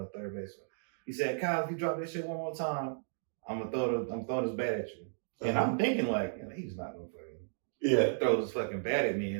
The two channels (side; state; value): left; silent; digital silence